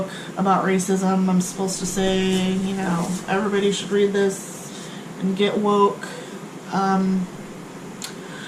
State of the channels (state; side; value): identical; both; correlation 1.00